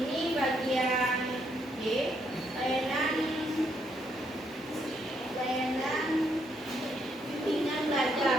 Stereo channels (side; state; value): both; normal; correlation 0.74